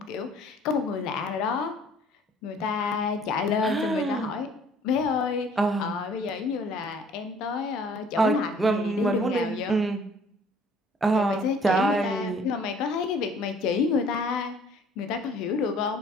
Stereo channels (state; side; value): normal; both; correlation 0.55